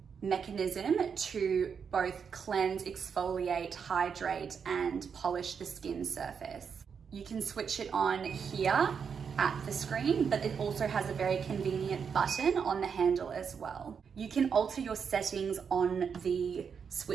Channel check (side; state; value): left; quieter; 6.6 dB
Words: mechanism to both cleanse, exfoliate, hydrate, and polish the skin surface. You can switch it on here at the screen, but it also has a very convenient button on the handle as well. You can alter your settings on the